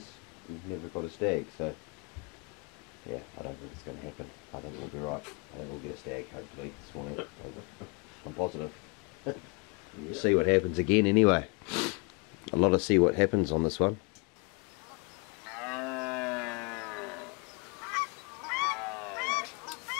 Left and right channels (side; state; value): right; quieter; 31.3 dB